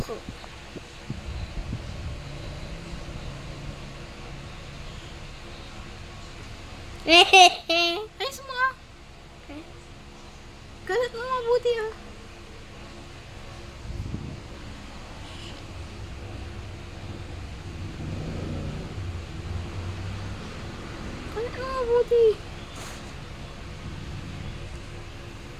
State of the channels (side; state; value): both; identical; correlation 1.00